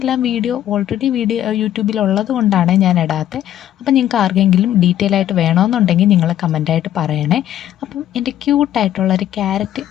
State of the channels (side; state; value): right; quieter; 11.8 dB